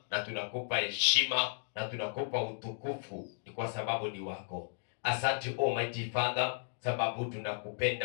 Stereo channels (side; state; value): right; silent; digital silence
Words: na tunakupa heshima na tunakupa utukufu, ni kwa sababu ni wako. Asante Almighty Father, sababu